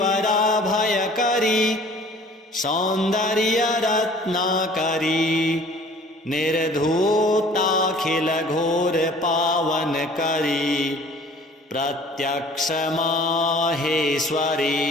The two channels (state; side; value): normal; both; correlation 0.50